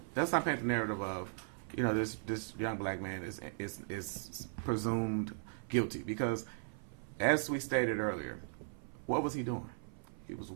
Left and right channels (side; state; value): left; silent; 53 dB below the other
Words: let's not paint the narrative of, you know, this young black man is presumed guilty, because, as we stated earlier, what was he doing? He was